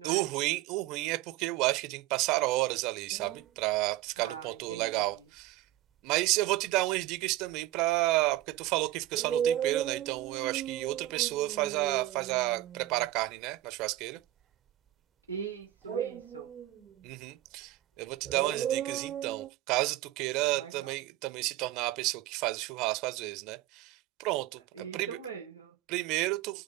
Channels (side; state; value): left; quieter; 15.7 dB